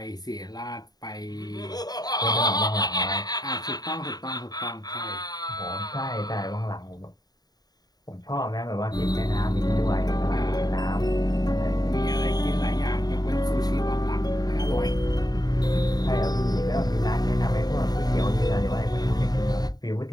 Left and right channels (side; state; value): right; late; 0.19 ms